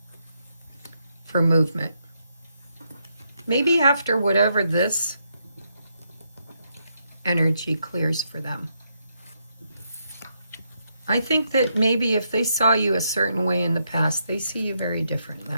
for movement. Maybe after whatever this energy clears for them. I think that maybe if they saw you a certain way in the past, they see you very different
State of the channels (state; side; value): inverted; both; correlation -0.79